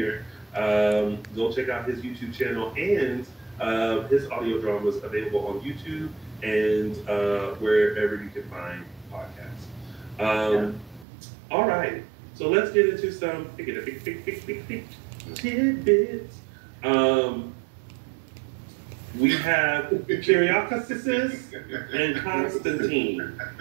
Go check out his YouTube channel, and his audio drama is available on YouTube and wherever you can find podcasts. All right, so let's get into some tidbits. We have Kyriakis and Constantine.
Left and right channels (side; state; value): left; drops out; at 11.1 s